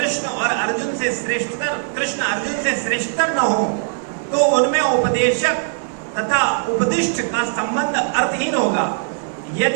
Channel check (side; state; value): left; silent; 66 dB below the other